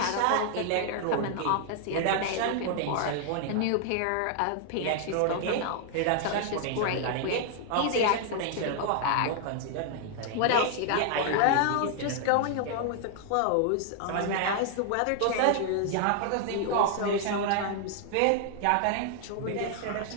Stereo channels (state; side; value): different; both; correlation 0.00